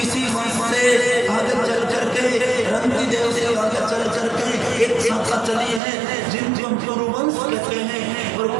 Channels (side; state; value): left; drops out; at 5.8 s